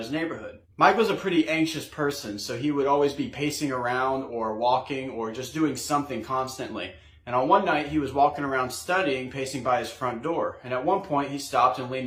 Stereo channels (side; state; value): both; identical; correlation 1.00